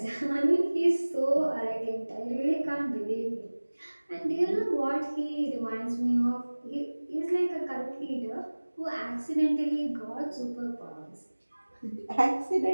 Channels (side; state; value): both; inverted; correlation -1.00